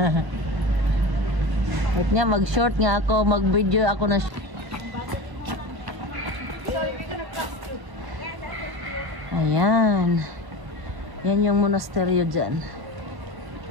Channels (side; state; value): left; late; 1.0 ms